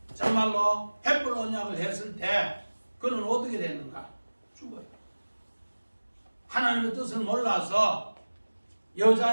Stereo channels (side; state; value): both; inverted; correlation -1.00